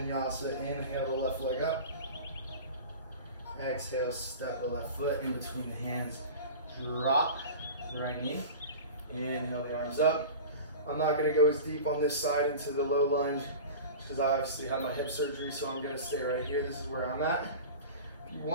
Inhale the left leg up. Exhale, step the left foot in between the hands. Drop the right knee. Inhale the arms up. I'm not gonna go as deep on this side into the low lunge because I obviously had my hip surgery, so I'm gonna stay right here. This is where I'm at. If you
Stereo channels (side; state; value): both; inverted; correlation -0.34